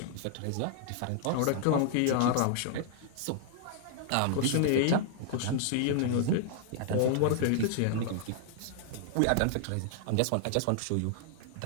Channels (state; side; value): different; both; correlation -0.01